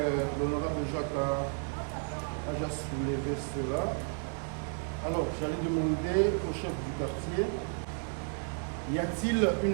l'honorable Jacques a déjà soulevé cela. Alors, j'allais demander au chef du quartier, y a-t-il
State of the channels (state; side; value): silent; left; 56 dB below the other